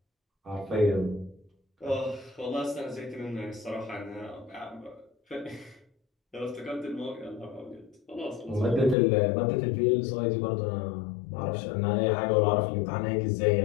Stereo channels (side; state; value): right; drops out; at 9.0 s